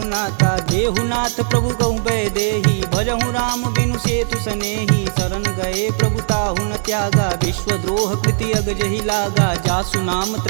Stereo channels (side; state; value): left; silent; digital silence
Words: देहुनाथ प्रभु गहु भय देहि भजहु राम बिनु सेतु सनेहि शरण गए प्रभु ताहु न त्यागा विश्वद्रोह कृति अग जहि लागा जासु नाम